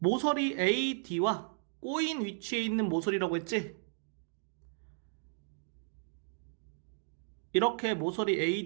AD와 꼬인 위치에 있는 모서리라고 했지? 이렇게 모서리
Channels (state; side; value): silent; left; digital silence